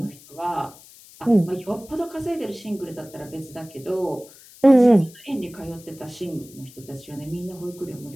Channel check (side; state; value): left; noise; hiss, 22 dB below the sound